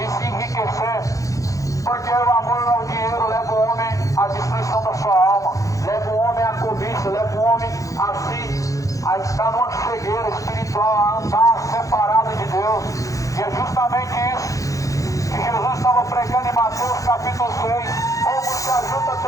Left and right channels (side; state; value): right; late; 0.16 ms